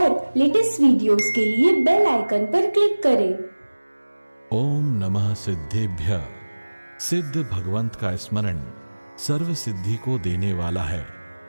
लेटेस्ट वीडियोस के लिए बेल आइकन पर क्लिक करें। ओम नमः सिद्धेभ्यः। सिद्ध भगवंत का स्मरण सर्व सिद्धि को देने वाला है।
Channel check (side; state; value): both; inverted; correlation -1.00